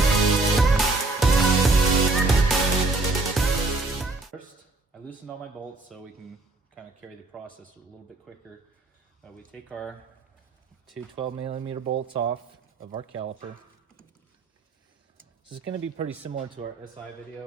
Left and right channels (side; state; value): left; quieter; 3.3 dB